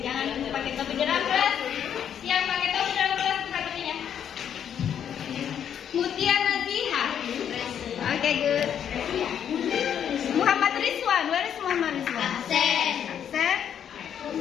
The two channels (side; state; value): right; quieter; 8.9 dB